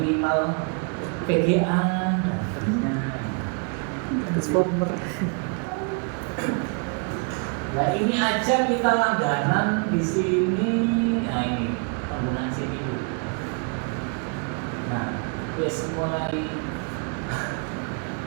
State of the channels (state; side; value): quieter; left; 38.1 dB